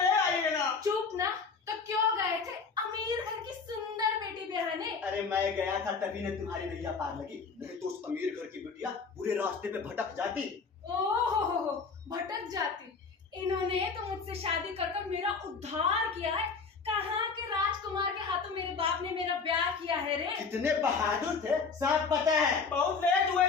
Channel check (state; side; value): quieter; right; 5.0 dB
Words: आइए ना। चुप ना, तो क्यों गए थे अमीर घर की सुंदर बेटी ब्याहने? अरे मैं गया था तभी ने तुम्हारी नैया पार लगी, नहीं तो उस अमीर घर की बिटिया बुरे रास्ते पे भटक जाती। ओहो, भटक जाती। इन्होंने तो मुझसे शादी कर कर मेरा उद्धार किया है। कहाँ के राजकुमार के हाथों मेरे बाप ने मेरा ब्याह किया है रे। कितने बहादुर थे, सब पता है। बहुत लेट हुए